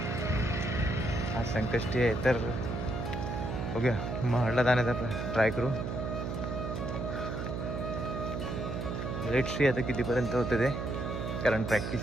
आज संकष्टी आहे तर बघूया महाडला जाण्याचा ट्राय करू. लेट सी आता कितीपर्यंत होतं ते, कारण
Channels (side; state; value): right; noise; hum, 3 dB below the sound